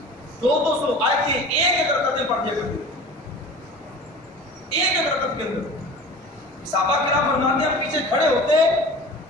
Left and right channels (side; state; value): both; normal; correlation 0.38